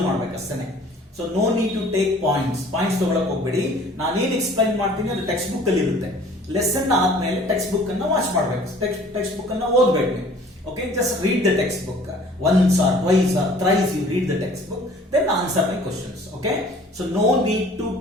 ಮಾಡಬೇಕು ಅಷ್ಟೇ. So no need to take points ತಗೊಳಕ್ ಹೋಗ್ಬೇಡಿ. ನಾನೇನ್ ಎಕ್ಸ್ಪ್ಲೈನ್ ಮಾಡ್ತೀನಿ ಅದು ಟೆಕ್ಸ್ಟ್ ಬುಕ್ ಅಲ್ಲಿ ಇರುತ್ತೆ. ಲೆಸನ್ ಆದ್ಮೇಲೆ ಟೆಕ್ಸ್ಟ್ ಬುಕ್ ಅನ್ನ ವಾಚ್ ಮಾಡಬೇಕು, ಟೆಕ್ಸ್ಟ್ ಬುಕ್ ಅನ್ನ ಓದಬೇಕು ನೀವು. Okay, just read the textbook once or twice or thrice. You read the textbook, then answer my questions. Okay, so no need to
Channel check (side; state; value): both; normal; correlation 0.51